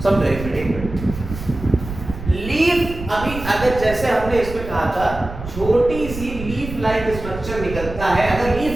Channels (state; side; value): noise; right; rumble, 10 dB below the sound